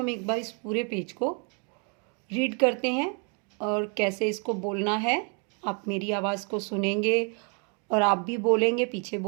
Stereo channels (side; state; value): left; quieter; 36.6 dB